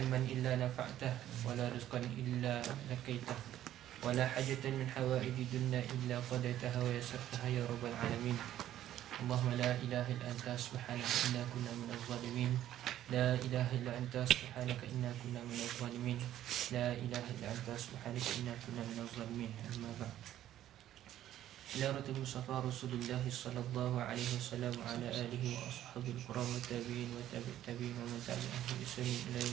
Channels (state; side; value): quieter; left; 12.3 dB